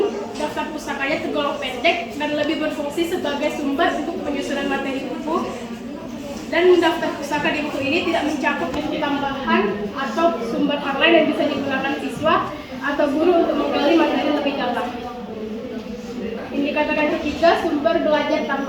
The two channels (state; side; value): identical; both; correlation 1.00